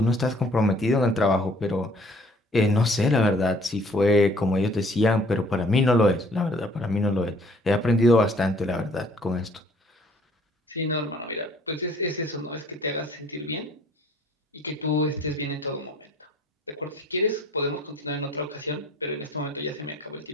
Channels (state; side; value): normal; both; correlation 0.57